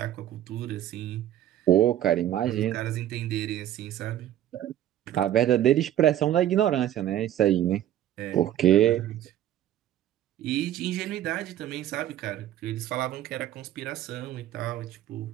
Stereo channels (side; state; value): left; quieter; 12.2 dB